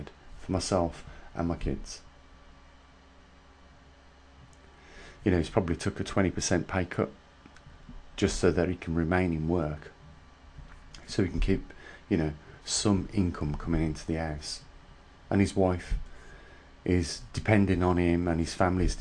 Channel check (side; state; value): both; identical; correlation 1.00